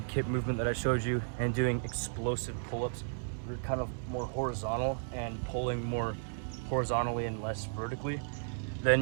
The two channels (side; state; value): left; silent; digital silence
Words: kip movement that I showed you, and doing explosive pull-ups, you're kind of more horizontal and pulling more horizontally and less vertically,